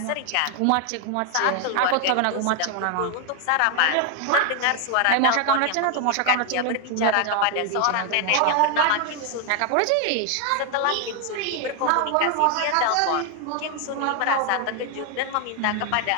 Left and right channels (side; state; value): both; different; correlation 0.01